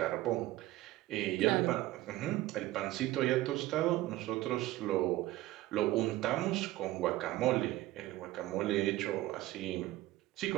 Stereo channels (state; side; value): quieter; left; 16.6 dB